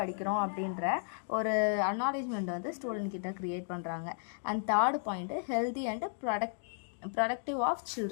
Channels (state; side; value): silent; right; digital silence